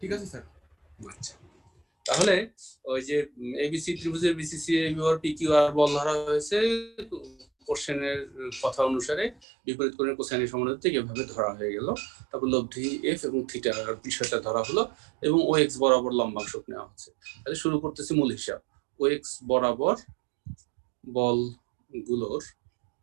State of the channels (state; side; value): drops out; left; at 9.3 s